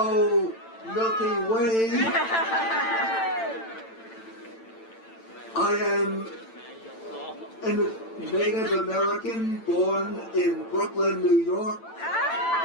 Milky Way. I am a Native American born in Brooklyn, New York.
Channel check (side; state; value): right; late; 8.9 ms